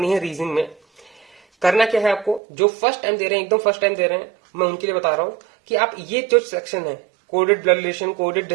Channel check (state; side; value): drops out; left; at 2.4 s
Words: है रीजनिंग में। करना क्या है आपको, जो फर्स्ट टाइम दे रहे हैं, एकदम फर्स्ट टाइम दे रहे हैं, मैं उनके लिए बता रहा हूं कि आप ये जो सेक्शन है, coded blood relation, coded